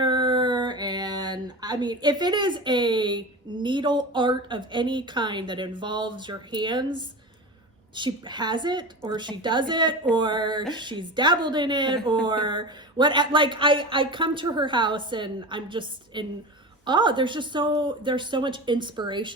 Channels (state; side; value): normal; both; correlation 0.28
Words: And I mean, if it is a needle art of any kind that involves your hands, she has it, or she does it, or she's dabbled in it, or what. Like I come to her house and I'm just in awe. There's so much